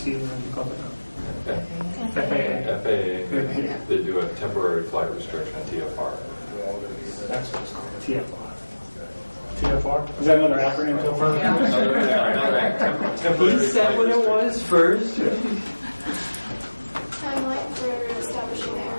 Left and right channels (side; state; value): both; inverted; correlation -1.00